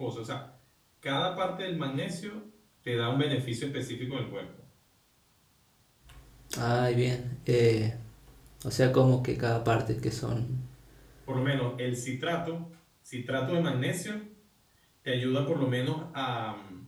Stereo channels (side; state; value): both; identical; correlation 1.00